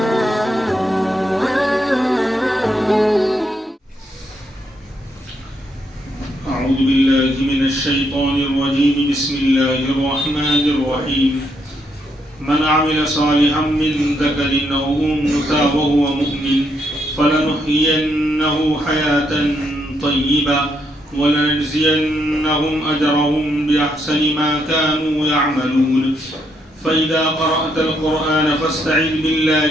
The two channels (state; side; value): normal; both; correlation 0.76